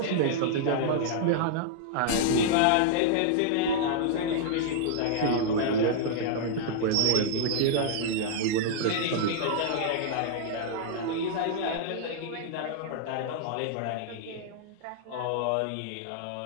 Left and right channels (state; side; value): different; both; correlation -0.01